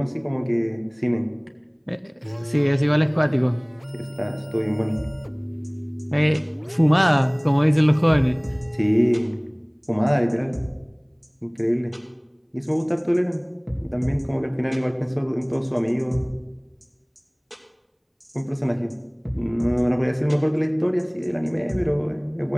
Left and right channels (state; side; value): identical; both; correlation 1.00